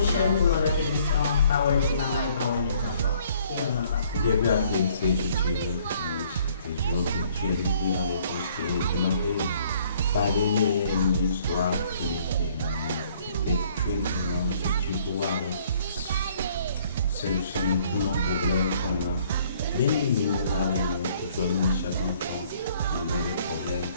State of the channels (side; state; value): both; inverted; correlation -0.61